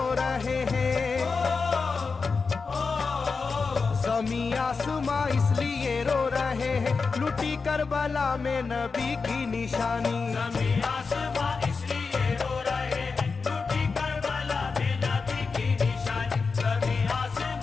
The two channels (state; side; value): quieter; right; 4.7 dB